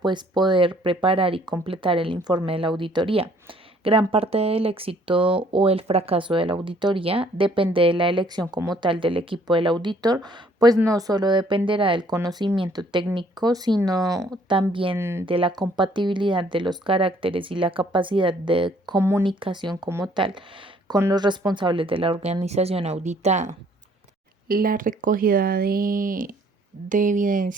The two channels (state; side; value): normal; both; correlation 0.61